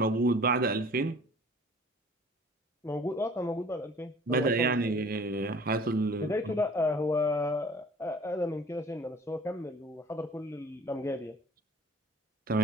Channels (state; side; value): normal; both; correlation 0.49